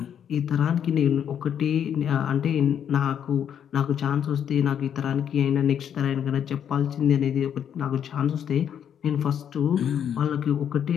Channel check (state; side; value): quieter; right; 8.8 dB